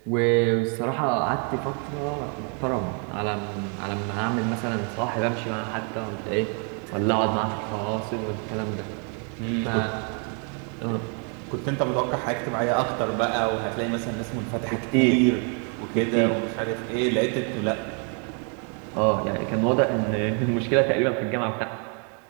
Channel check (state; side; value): quieter; left; 39.0 dB